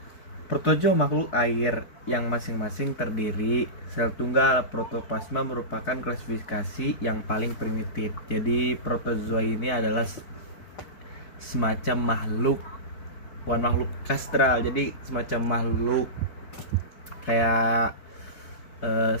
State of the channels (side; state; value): right; late; 4.6 ms